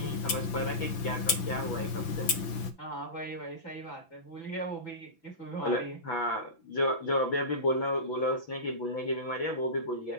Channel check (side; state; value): right; late; 6.0 ms